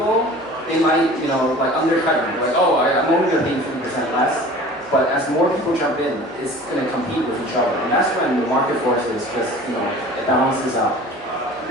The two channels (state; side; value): noise; left; hum, 28 dB below the sound